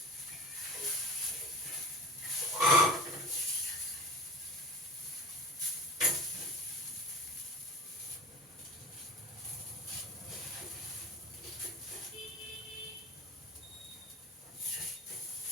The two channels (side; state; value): both; normal; correlation 0.38